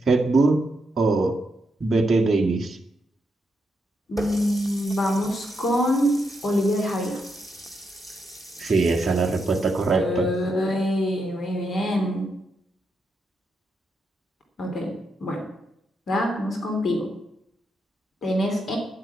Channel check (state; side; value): normal; both; correlation 0.82